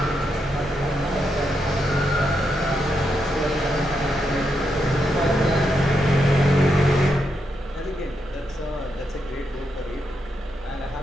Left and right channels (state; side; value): normal; both; correlation 0.82